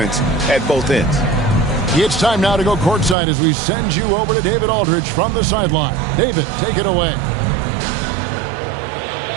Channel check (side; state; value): left; drops out; at 3.2 s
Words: at both ends. It's time now to go courtside as we send you over to David Aldridge from the sideline. David, take it away.